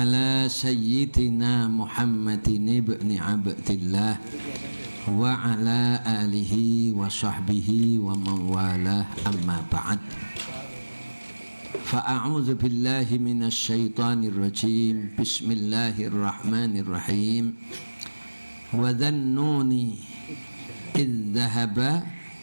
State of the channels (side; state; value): both; inverted; correlation -1.00